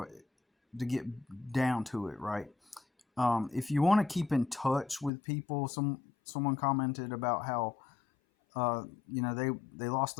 get down to it, right? If you want to keep in touch with people, someone commented about how they lost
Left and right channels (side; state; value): right; drops out; at 5.1 s